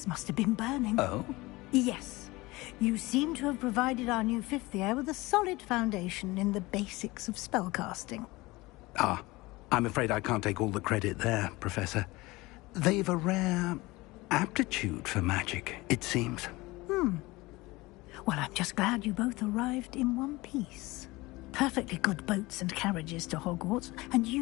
must have been burning. Oh? Yes. You seem to have provided our new fifth year with a solid foundation in the basics of spellcasting. Ah, I'm afraid I can't take all the credit there, Professor. They've a rare aptitude for magic, it seems. Well, I'm just glad you both arrived in one piece. Perfectly good boats and carriages to Hogwarts, and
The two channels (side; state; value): right; quieter; 21.5 dB